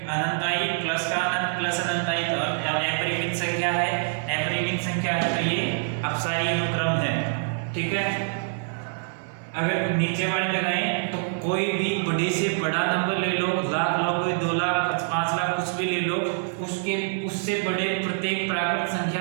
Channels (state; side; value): silent; left; 61 dB below the other